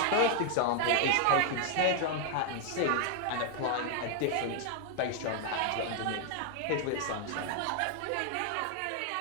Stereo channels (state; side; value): different; both; correlation 0.00